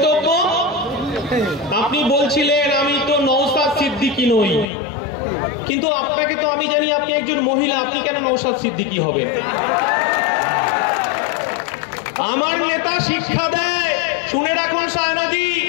আপনি বলছিলেন আমি তো নওশাদ সিদ্দিকী নই, কিন্তু আপনাকে তো আমি জানি আপনি একজন মহিলা, আপনি কেন নওশাদ সিদ্দিকী হবেন? আমার নেতা শিক্ষা দেয়, শুনে রাখুন সায়নাদি,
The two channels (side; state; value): right; drops out; at 4.7 s